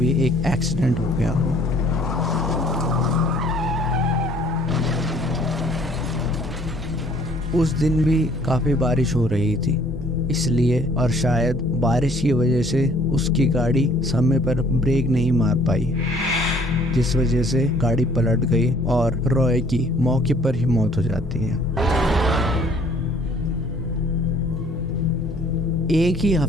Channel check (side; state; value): both; normal; correlation 0.58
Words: एक एक्सीडेंट हो गया हो। उस दिन भी काफ़ी बारिश हो रही थी, इसलिए और शायद बारिश की वजह से उसकी गाड़ी समय पर ब्रेक नहीं मार पाई, जिस वजह से गाड़ी पलट गई और रॉय की मौके पर ही मौत हो जाती है। एक ही